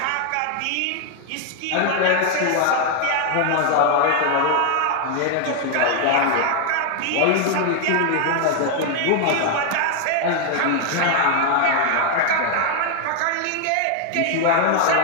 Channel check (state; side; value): different; both; correlation 0.00